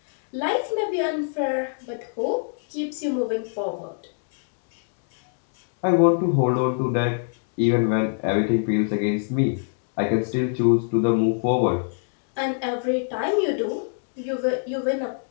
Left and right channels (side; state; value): right; silent; digital silence